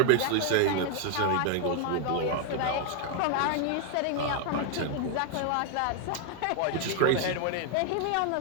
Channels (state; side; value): different; both; correlation 0.00